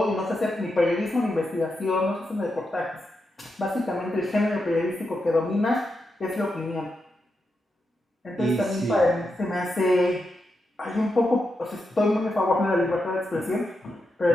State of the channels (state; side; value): normal; both; correlation 0.86